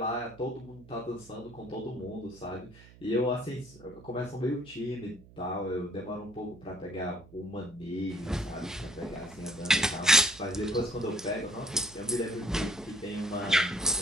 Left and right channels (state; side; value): noise; right; hum, 21 dB below the sound